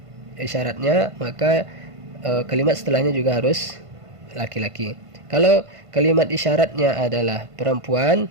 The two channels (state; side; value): late; left; 1.5 ms